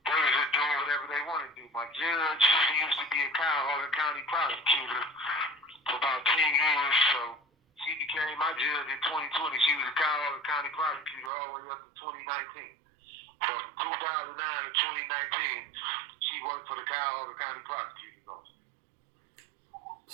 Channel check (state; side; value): drops out; left; at 11.3 s